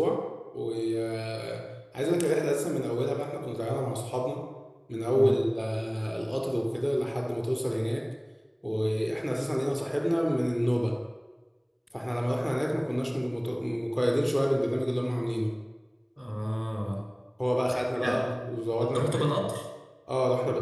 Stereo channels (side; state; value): both; identical; correlation 1.00